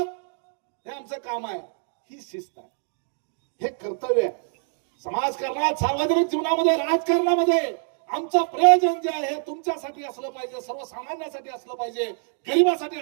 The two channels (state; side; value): silent; left; 61 dB below the other